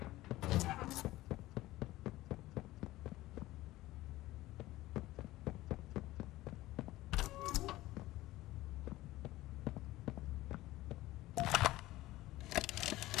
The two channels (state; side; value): quieter; right; 17.1 dB